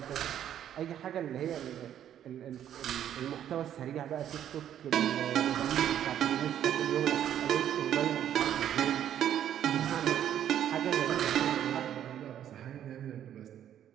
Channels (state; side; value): quieter; left; 10.4 dB